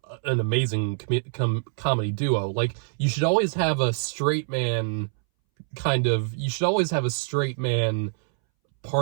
an amazing comedy duo. Like, you should always have a straight man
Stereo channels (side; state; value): left; silent; 62 dB below the other